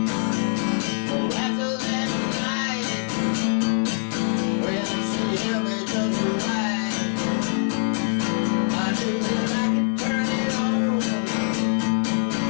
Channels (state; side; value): silent; right; digital silence